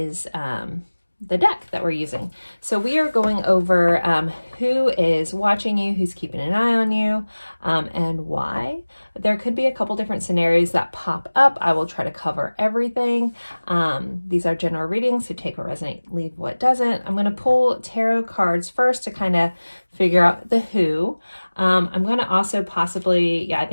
the deck that we're using. So we are going over who is watching you, who's keeping an eye on you, and why. There could be a couple different scenarios that pop up. I will try to cover everything. These are general readings, so take what resonates, leave what doesn't. I'm going to pull tarot cards first to kind of figure out the who. I'm going to also possibly, I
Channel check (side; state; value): both; inverted; correlation -1.00